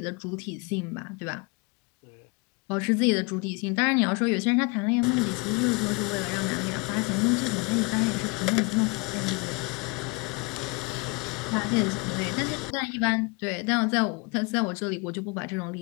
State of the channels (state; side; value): quieter; right; 29.2 dB